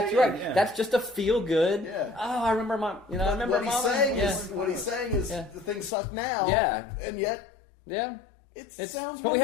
right. Yeah. That's just a feel good. Yeah. Oh, I remember my. I remember what he's saying is the things suck now. Yeah. And yet. Yeah. It sounds wonderful. But we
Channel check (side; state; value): right; drops out; at 5.9 s